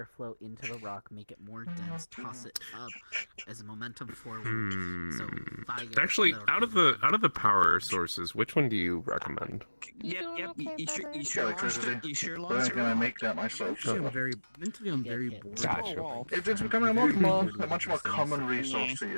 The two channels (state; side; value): inverted; both; correlation -1.00